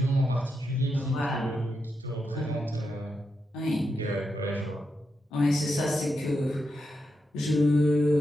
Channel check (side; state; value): both; normal; correlation 0.85